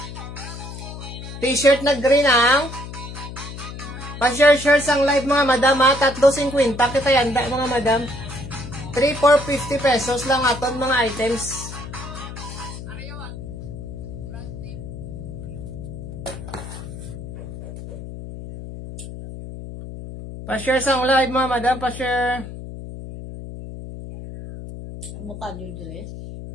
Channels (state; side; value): noise; left; hum, 10 dB below the sound